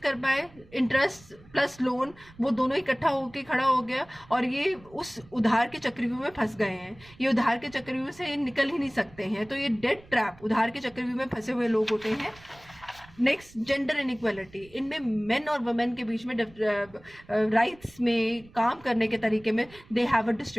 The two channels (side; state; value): right; noise; rumble, 24 dB below the sound